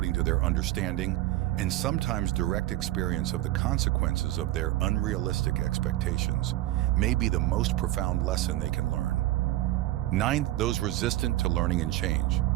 to their understanding and sometimes direct experience of the consequences of their unrealistic expectations may be the most profound lesson they can learn. Ninth, those resistant to learning and change.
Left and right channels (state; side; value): quieter; left; 15.7 dB